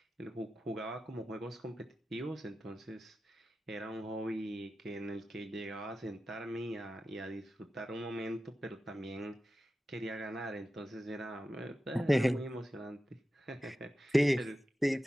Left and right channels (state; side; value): normal; both; correlation 0.92